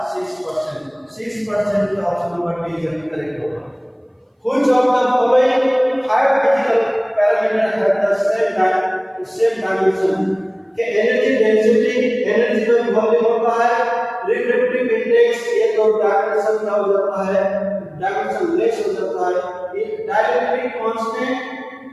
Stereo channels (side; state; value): both; identical; correlation 1.00